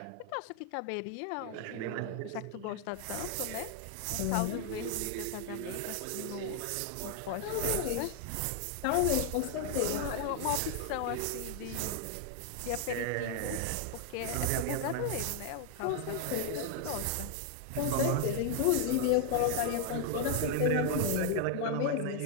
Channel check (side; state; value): both; different; correlation 0.00